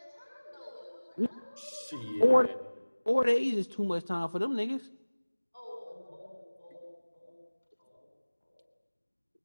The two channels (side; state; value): both; inverted; correlation -1.00